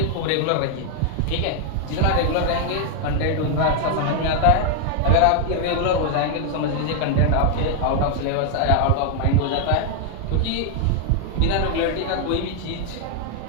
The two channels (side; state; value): both; different; correlation 0.00